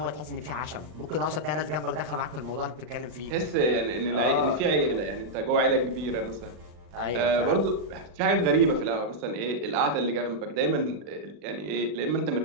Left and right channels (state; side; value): late; left; 40 ms